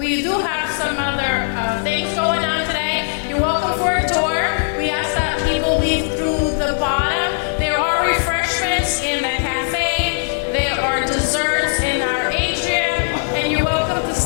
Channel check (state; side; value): silent; right; 66 dB below the other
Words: do have some other things going on today. You're welcome for a tour. We ask that people leave through the bottom. There are refreshments in the cafe. There are desserts in our atrium, and you're welcome to